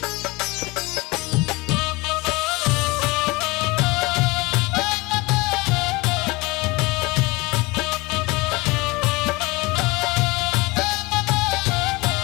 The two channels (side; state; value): right; quieter; 23.7 dB